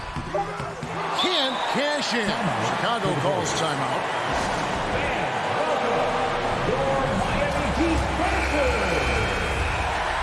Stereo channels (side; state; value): both; identical; correlation 1.00